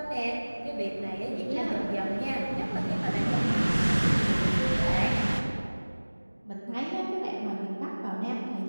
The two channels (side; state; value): both; inverted; correlation -1.00